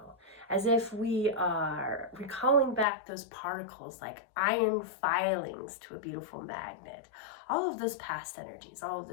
as if we are recalling back those particles like iron filings to a beautiful magnet. All of those past energies, all of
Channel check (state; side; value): drops out; right; at 2.9 s